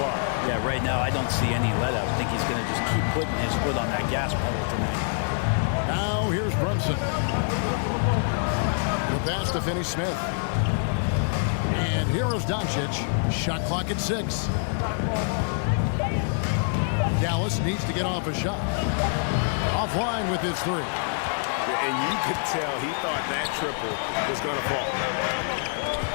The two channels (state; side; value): silent; right; digital silence